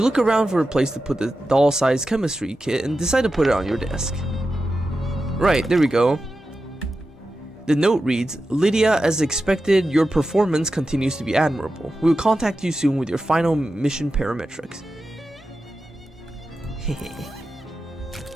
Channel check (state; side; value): normal; both; correlation 0.91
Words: look around for a place to put the doll-sized chemistry kit and decide to put it on your desk. Right, there we go. The note reads, Lydia, as expected, your performance continues to be admirable. We will contact you soon with your final mission parametrics.